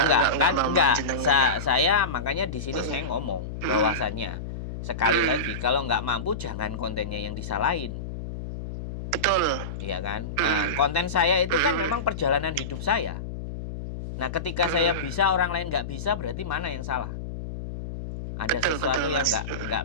mama enggak. jenengan ya. Saya makanya di sini Mm-mm. saya ngomong Mm-mm. bahwasannya sekali Mm-mm. lagi kalau nggak mampu jangan kontennya yang disalahin. Betul. Iya kan? Mm-mm. Konten saya itu kan Mm-mm. memang perjalanan hidup saya. Nah, ketika saya Mm-mm. bisa, orang lain nggak bisa, berarti mana yang salah? Ada Betul sesuatu yang Mas. nggak.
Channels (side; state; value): left; noise; hum, 7 dB below the sound